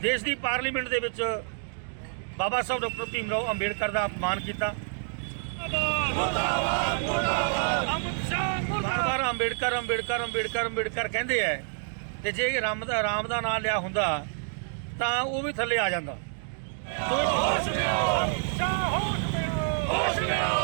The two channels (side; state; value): left; silent; digital silence